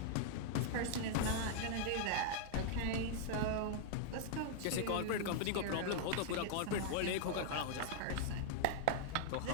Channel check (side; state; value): both; different; correlation -0.01